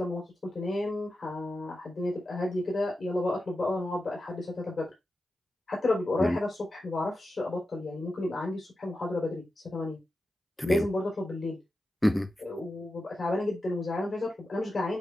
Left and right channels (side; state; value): both; normal; correlation 0.91